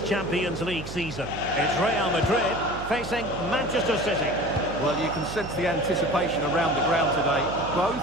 Champions League season. It's Real Madrid facing Manchester City. Well, you can sense the anticipation around the ground today. Both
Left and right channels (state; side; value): noise; right; hum, 11 dB below the sound